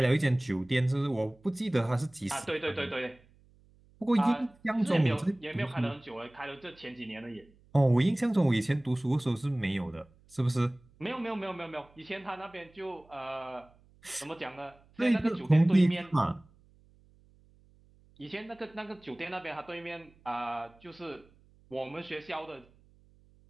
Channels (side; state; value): right; noise; hum, 29 dB below the sound